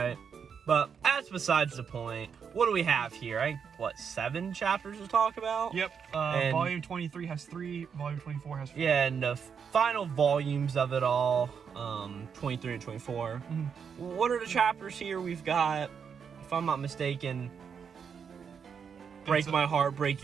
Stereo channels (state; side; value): quieter; left; 6.8 dB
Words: But that's besides the point. What do we have here? I think, what, 7 chapters to talk about? Yep. Volume 23 has 3. Volume 24 has 4. Yeah, and the final volumes of it all, 23 and 24. What are the chapters here? We've got, if I'm not mistaken, Break My Heart, Break